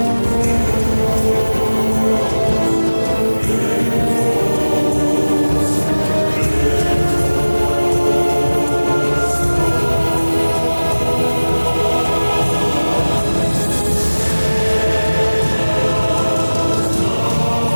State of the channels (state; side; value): inverted; both; correlation -1.00